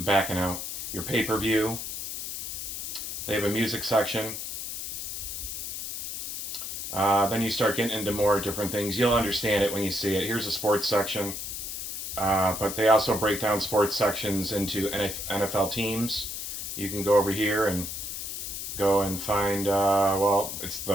backing out. Your pay-per-view. They have a music section. Then you start getting into more different things. You'll understand it when you see it. Here's a sports section. But they also break down sports sections into NFL teams. You can go over here and go and find, it's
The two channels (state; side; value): noise; left; hiss, 6 dB below the sound